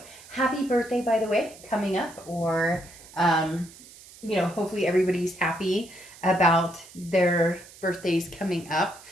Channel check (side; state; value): right; noise; hiss, 20 dB below the sound